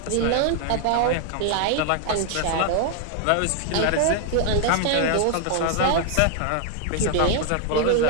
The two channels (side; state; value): both; different; correlation 0.00